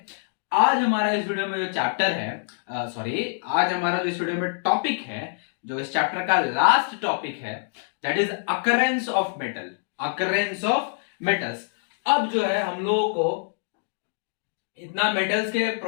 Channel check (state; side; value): silent; right; digital silence